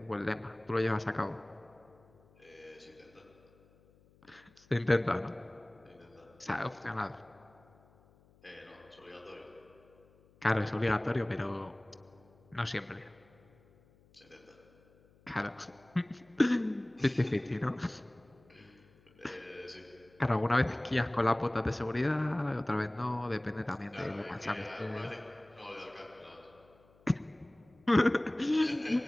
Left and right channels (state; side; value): noise; left; hum, 29 dB below the sound